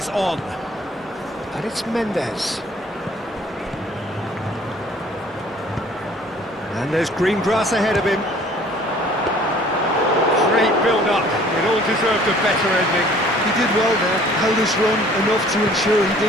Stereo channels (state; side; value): normal; both; correlation 0.54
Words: on. And it's Mendes. And there's green grass ahead of him. Great build-up. It all deserved a better ending. He did well there, held his run enough to ensure he